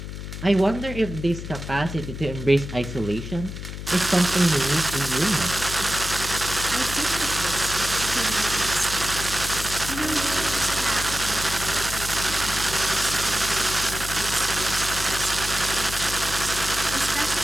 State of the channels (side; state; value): left; noise; hum, 8 dB below the sound